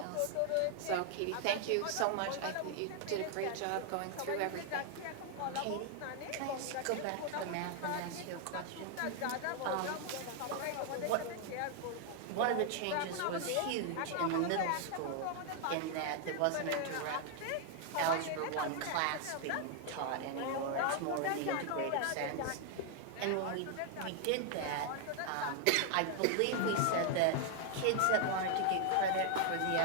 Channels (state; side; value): different; both; correlation 0.00